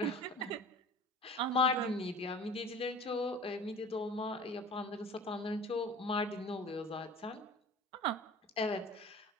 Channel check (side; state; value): both; normal; correlation 0.42